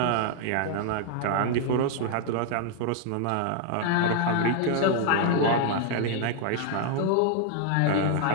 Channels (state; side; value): different; both; correlation 0.00